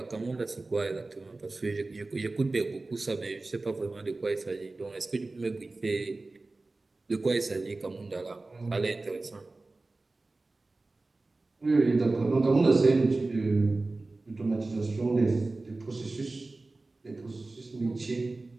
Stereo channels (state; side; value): quieter; left; 3.3 dB